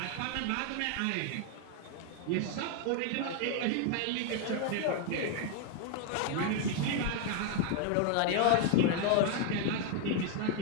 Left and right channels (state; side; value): different; both; correlation 0.00